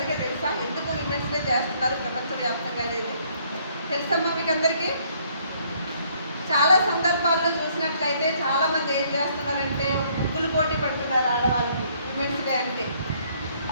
తెలుసా? ఎందుకు విమెన్స్ డే చేస్తున్నారు ప్రపంచవ్యాప్తంగా అనేది తెలుసమ్మా మీకు అందరికీ? చాలా సందర్భాల్లో చూసినట్లయితే చాలామంది ఏం చేస్తున్నారంటే ముగ్గులు పోటీ పెడుతున్నారు ఆడవాళ్ళకి విమెన్స్ డే అంటే,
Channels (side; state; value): both; inverted; correlation -0.65